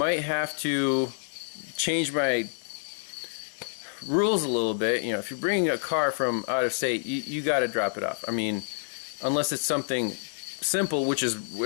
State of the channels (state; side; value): silent; right; 59 dB below the other